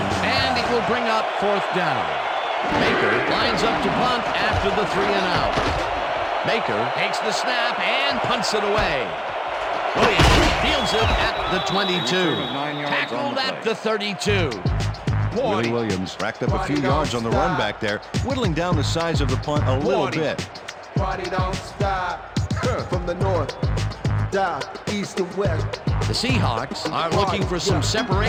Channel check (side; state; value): both; identical; correlation 1.00